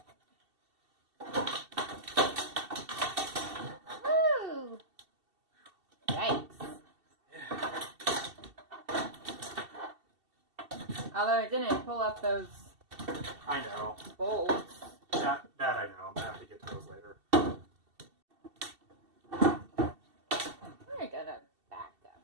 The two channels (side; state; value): left; late; 2.7 ms